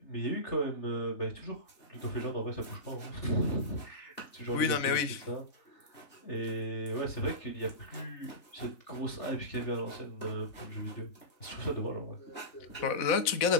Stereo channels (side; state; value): right; late; 4.0 ms